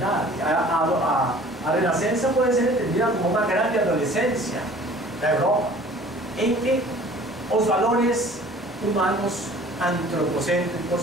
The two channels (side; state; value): both; normal; correlation 0.49